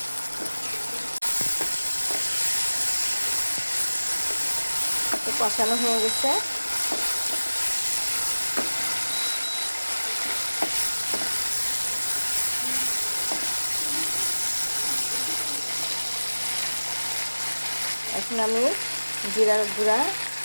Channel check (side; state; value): both; inverted; correlation -1.00